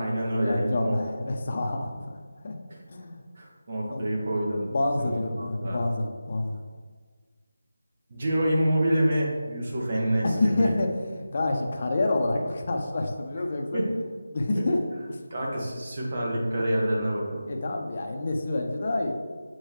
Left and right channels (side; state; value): both; inverted; correlation -0.93